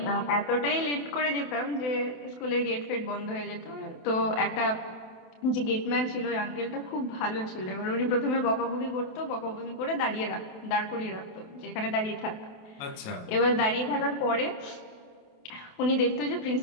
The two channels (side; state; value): right; late; 28 ms